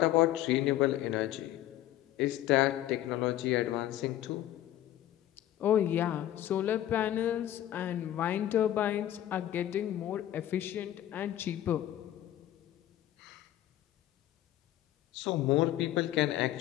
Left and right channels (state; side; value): quieter; right; 13.1 dB